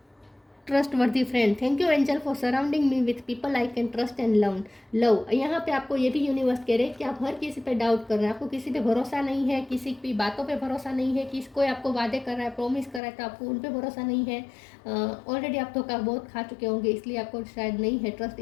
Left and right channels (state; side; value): drops out; right; at 13.0 s